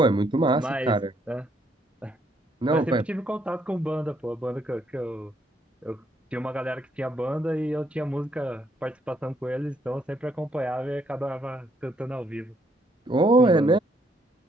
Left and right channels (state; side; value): normal; both; correlation 0.71